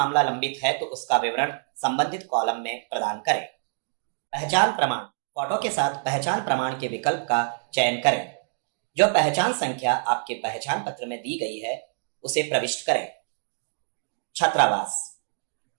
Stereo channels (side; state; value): left; silent; digital silence